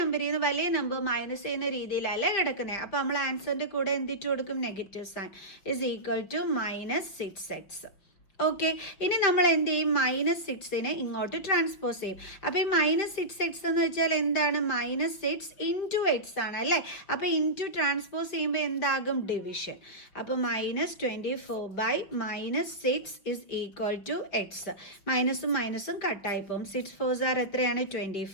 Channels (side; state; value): right; late; 5.2 ms